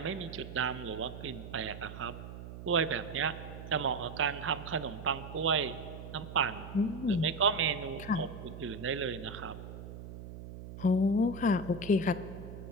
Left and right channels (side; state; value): right; noise; hum, 11 dB below the sound